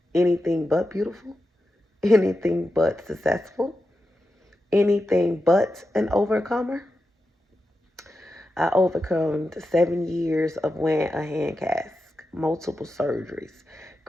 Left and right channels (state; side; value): normal; both; correlation 0.90